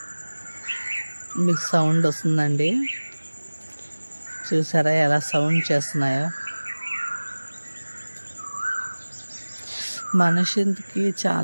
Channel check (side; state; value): both; inverted; correlation -1.00